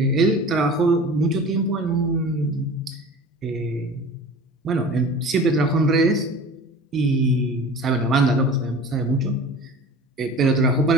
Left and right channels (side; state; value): both; normal; correlation 0.39